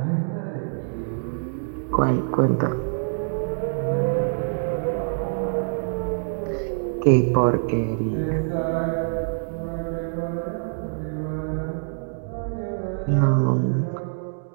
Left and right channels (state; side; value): silent; left; digital silence